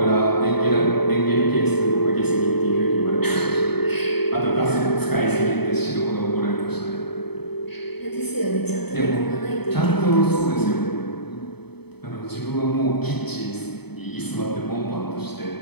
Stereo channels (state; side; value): late; right; 0.97 ms